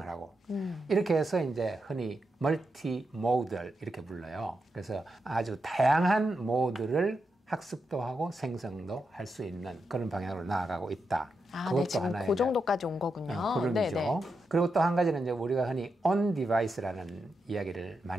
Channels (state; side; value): normal; both; correlation 0.86